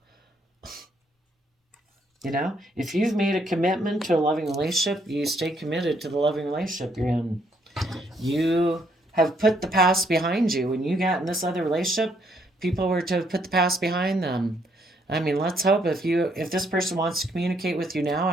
If you've made a commitment to a loving relationship, you stay committed to the loving relationship you're in. You have put the past behind you. When you got in this other relationship, people were to put the past behind them. I mean, let's hope if this person wants to communicate with you now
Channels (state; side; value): normal; both; correlation 0.71